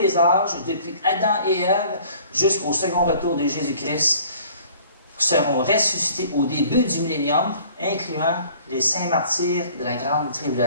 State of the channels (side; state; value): both; inverted; correlation -0.52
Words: âges, depuis Adam et Ève jusqu'au second retour de Jésus-Christ, seront ressuscités au début du millénium, incluant les saints martyrs de la grande